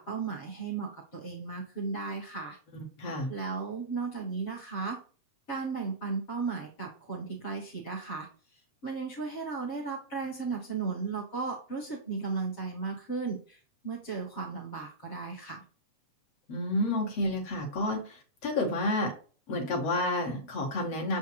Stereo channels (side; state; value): right; late; 7.8 ms